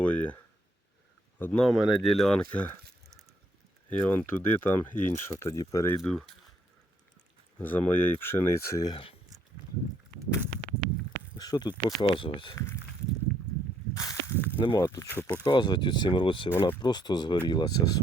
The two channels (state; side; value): normal; both; correlation 0.70